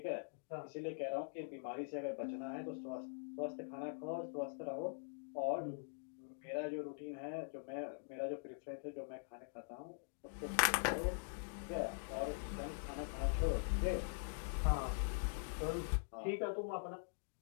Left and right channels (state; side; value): silent; right; digital silence